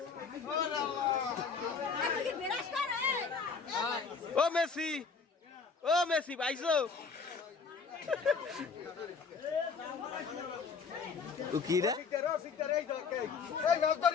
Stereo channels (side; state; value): right; quieter; 5.3 dB